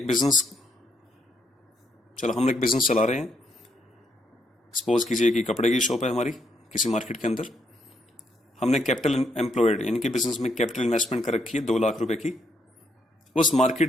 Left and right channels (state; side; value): normal; both; correlation 0.76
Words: बिजनेस चला रहे हैं। सपोज कीजिए कि कपड़े की शॉप है हमारी किसी मार्केट के अंदर। हमने कैपिटल एम्प्लॉयड यानी कि बिजनेस में कैपिटल इन्वेस्टमेंट कर रखी है 2 लाख रुपए की। उस